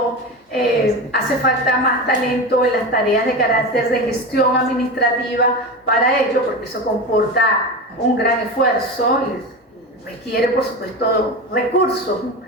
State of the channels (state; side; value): normal; both; correlation 0.24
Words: hace falta más talento en las tareas de carácter de gestión administrativa para ello, porque eso comporta un gran esfuerzo y requiere, por supuesto, recursos.